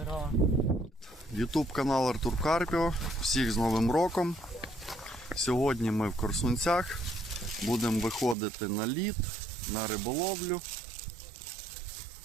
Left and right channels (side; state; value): left; drops out; at 8.3 s